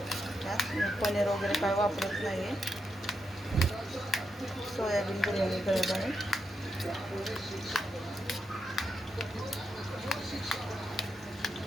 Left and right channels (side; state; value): both; normal; correlation 0.84